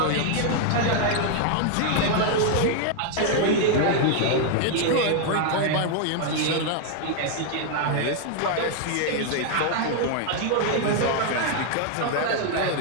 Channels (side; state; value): both; different; correlation 0.00